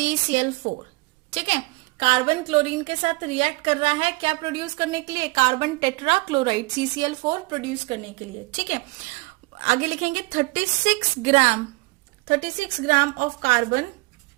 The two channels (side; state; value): left; quieter; 24.4 dB